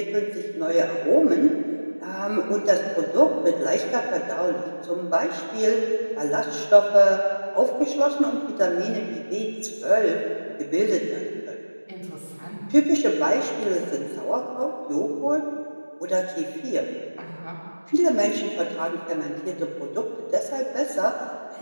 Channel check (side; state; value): both; inverted; correlation -1.00